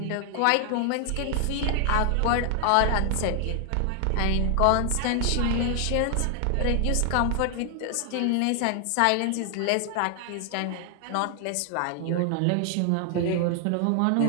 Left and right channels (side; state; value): both; different; correlation 0.00